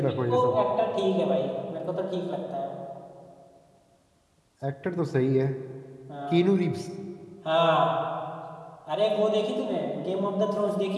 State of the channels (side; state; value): both; identical; correlation 1.00